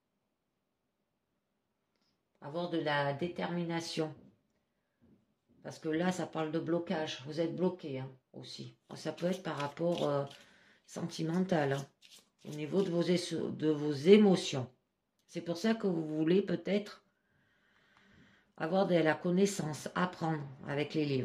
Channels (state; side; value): identical; both; correlation 1.00